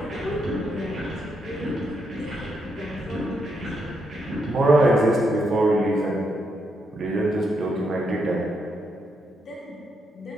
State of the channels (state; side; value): normal; both; correlation 0.79